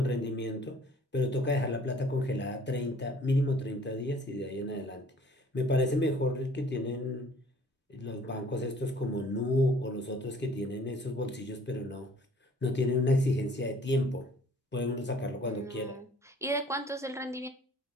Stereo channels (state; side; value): normal; both; correlation 0.54